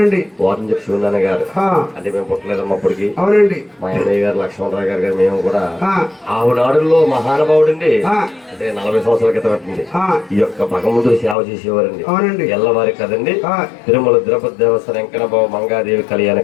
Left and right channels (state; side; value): drops out; right; at 11.4 s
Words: వారం చెప్పి శివనాన్న గారు అంటే మేము పుట్టలేదమ్మా అప్పటికి. మా అన్నయ్య గారు లక్ష్మణరావు గారు మేము కూడా ఆవునాడుల్లో మహానుభావుడండి. అంటే 40 సంవత్సరాల క్రితం పెట్టింది ఈ యొక్క భగవంతుడి సేవ చేసేవారండి. ఎల్లవారి కదండి. తిరుమల తిరుపతి దేవస్థానం వెంకటబాబు మంగాదేవి కళ్యాణ